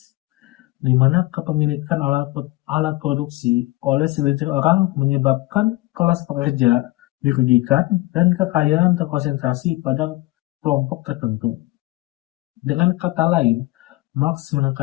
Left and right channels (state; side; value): quieter; right; 19.9 dB